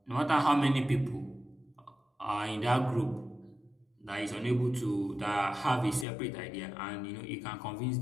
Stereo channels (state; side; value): drops out; right; at 6.1 s